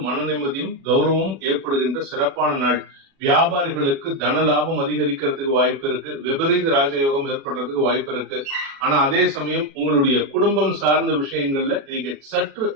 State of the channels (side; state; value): left; late; 37 ms